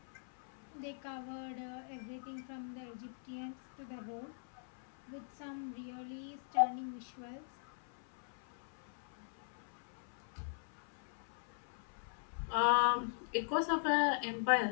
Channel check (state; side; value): silent; right; 50 dB below the other